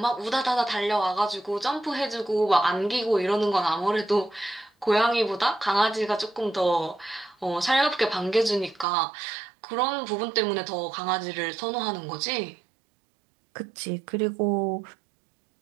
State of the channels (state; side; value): drops out; left; at 8.8 s